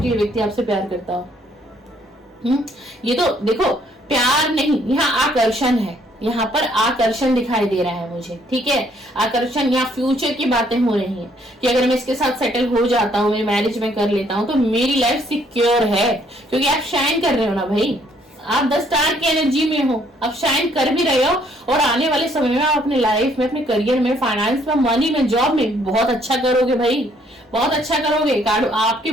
कि ये व्यक्ति आपसे प्यार करता हो। ये तो देखो प्यार नहीं, यहाँ आकर्षण है, यहाँ पर आकर्षण दिखाई दे रहा है मुझे, ठीक है? आकर्षण, यहाँ फ्यूचर की बातें हो रही हैं कि अगर मैं इसके साथ सेटल हो जाता हूँ, मेरी मैरिज में कर लेता हूँ, तो मेरी लाइफ सिक्योर है। क्योंकि आप शाइन कर रहे हो ना भाई, आप 10 स्टार की एनर्जी में हो, आप शाइन कर भी रहे हो, और आने वाले समय में आप अपनी लाइफ में, अपने करियर में, फाइनेंस में, मनी में, जॉब में बहुत अच्छा करोगे भाई, बहुत अच्छा करोगे। कार्ड आपके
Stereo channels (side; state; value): both; normal; correlation 0.66